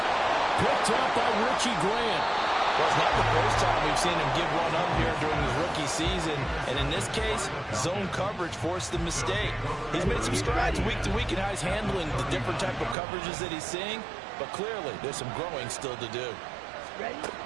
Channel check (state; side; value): drops out; left; at 13.0 s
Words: Picked up by Richie Grant. Well, it's not the first time we've seen him give one up here during his rookie season. And in this case, zone coverage forced the mistake. He's made some strides week to week in how he's handling the different type of coverages that he's seeing. But clearly, there's some growing still to do. Ready?